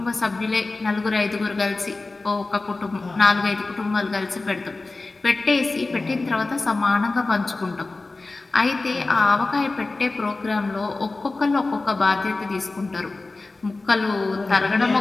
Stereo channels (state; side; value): quieter; right; 3.4 dB